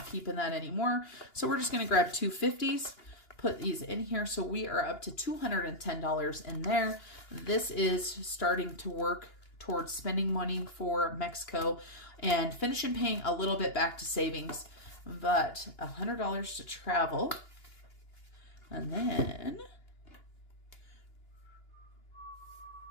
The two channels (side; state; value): right; late; 2.9 ms